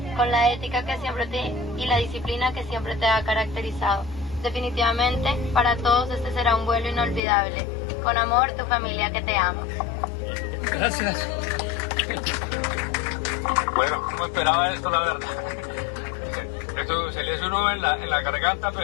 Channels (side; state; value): right; drops out; at 7.2 s